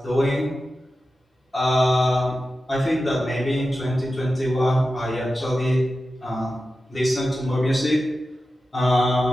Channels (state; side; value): normal; both; correlation 0.92